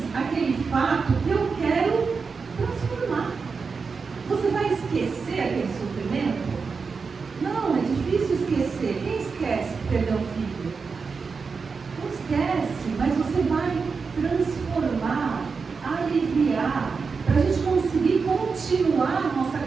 àquele fato que eu quero transformar. Você vai esquecer aquele sofrimento? Não, é difícil esquecer. Quem esquece que perdeu um filho? Não esquece, mas você vai transformar, aliviar, para a gente conseguir continuar a nossa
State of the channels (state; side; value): quieter; left; 5.0 dB